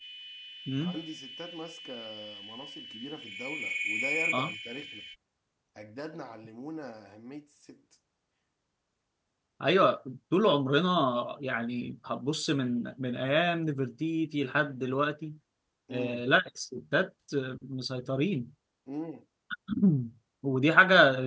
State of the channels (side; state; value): both; identical; correlation 1.00